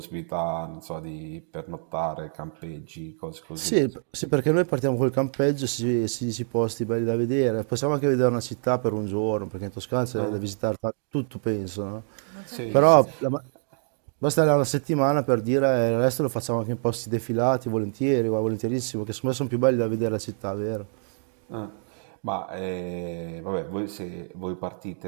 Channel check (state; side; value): silent; left; 60 dB below the other